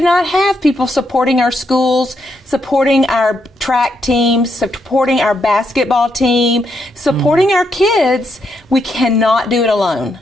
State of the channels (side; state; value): both; normal; correlation 0.79